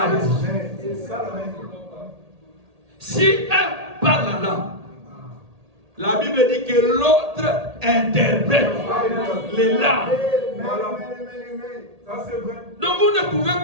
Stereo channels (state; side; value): late; left; 1.8 ms